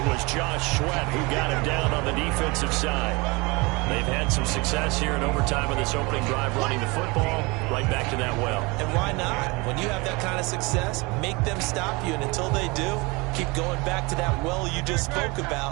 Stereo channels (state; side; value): quieter; left; 26.0 dB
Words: was Josh Sweat who got him down on the defensive side. They've had some success here in overtime in this opening drive running the football. Right back to that well. And why not? When you have that kind of success, make them stop you. And until they do, keep going back to that well you just spoke